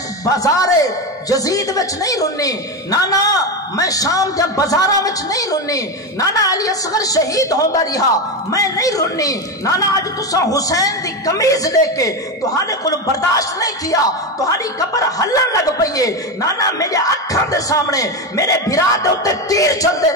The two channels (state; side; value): normal; both; correlation 0.15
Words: بازار یزید وچ نہیں رنی، نانا میں شام دے بازاراں وچ نہیں رنی، نانا علی اصغر شہید ہوندا رہا میں نہیں رنی، نانا اج تساں حسین دی قمیض لے کے تہاڈے کول برداشت نہیں کیا، تہاڈی قبر ہلن لگ پئی ہے، نانا میرے اکھاں دے سامنے میرے بھرا دے اوتے تیر چلدے